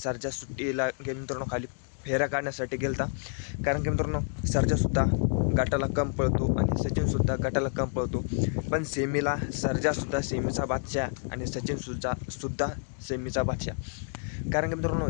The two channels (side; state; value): right; silent; 59 dB below the other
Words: सुट्टीला मित्रांनो खाली फेरा काढण्यासाठी गेलता. कारण की मित्रांनो, सर्जासुद्धा गटाला कम पळतो आणि सचिनसुद्धा गटाला कम पळतो. पण सेमीला सर्जासुद्धा सेमीचा बादशाह आणि सचिनसुद्धा सेमीचा बादशाह. कारण की मित्रांनो,